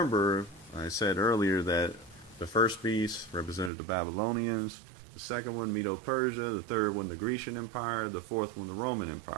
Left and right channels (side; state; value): left; drops out; at 3.7 s